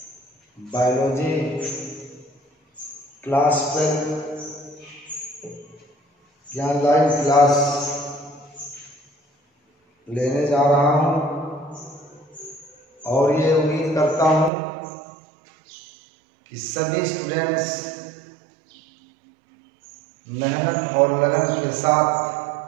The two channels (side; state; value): left; drops out; at 14.5 s